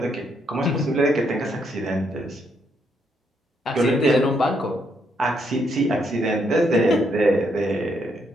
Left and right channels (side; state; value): both; normal; correlation 0.75